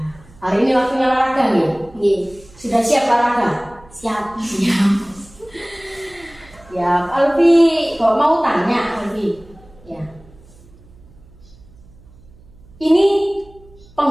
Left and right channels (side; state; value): right; noise; hum, 25 dB below the sound